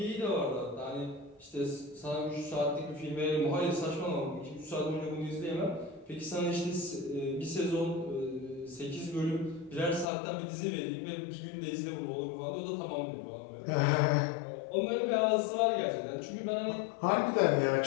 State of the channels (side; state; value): right; drops out; at 10.1 s